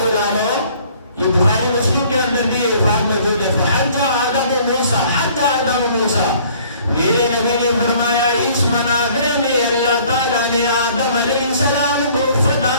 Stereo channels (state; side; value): inverted; both; correlation -0.56